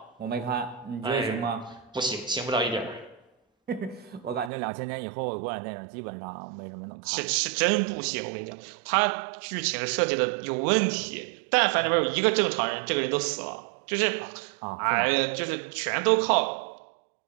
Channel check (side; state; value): left; drops out; at 4.5 s